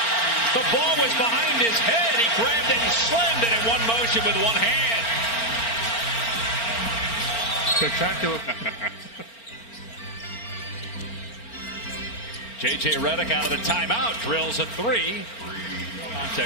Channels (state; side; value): late; right; 4.4 ms